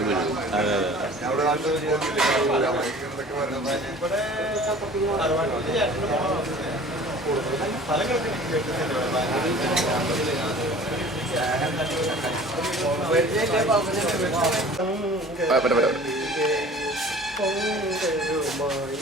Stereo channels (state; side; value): normal; both; correlation 0.45